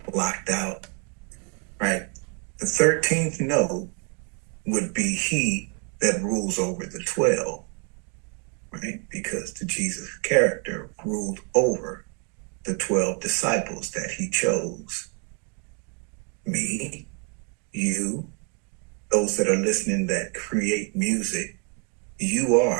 locked out, right? The 13th note would be he that rules over the 12, right? Because the Jesus character ruled over the 12 disciples that he chose. Me, you, those that are listening that create music, you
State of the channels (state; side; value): quieter; left; 35.7 dB